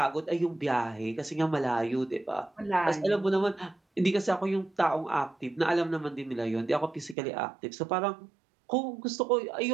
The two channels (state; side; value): drops out; left; at 7.2 s